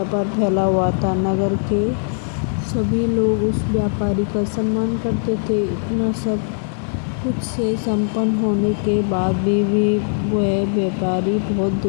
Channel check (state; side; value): silent; right; 66 dB below the other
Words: फैला हुआ था। नगर के सभी लोग उस व्यापारी का सम्मान करते थे। इतना सब कुछ से संपन्न होने के बाद भी वह व्यापारी बहुत